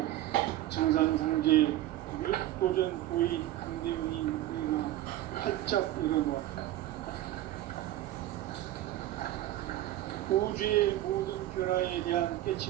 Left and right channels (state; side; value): quieter; left; 14.4 dB